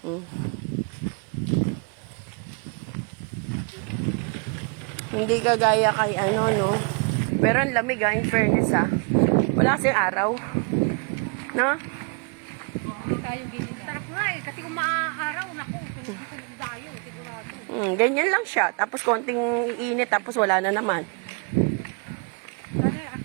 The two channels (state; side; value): quieter; left; 35.1 dB